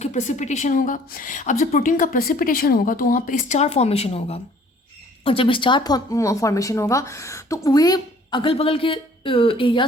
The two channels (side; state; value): both; normal; correlation 0.55